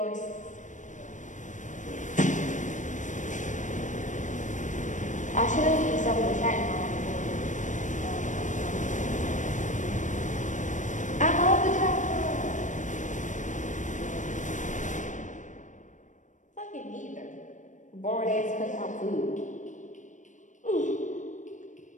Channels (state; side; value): late; right; 0.36 ms